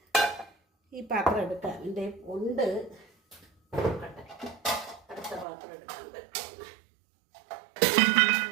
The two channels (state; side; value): drops out; left; at 5.5 s